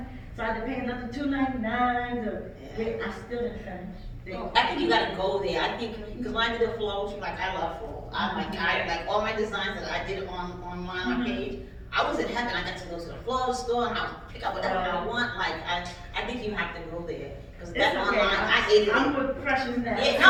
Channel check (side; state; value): both; identical; correlation 1.00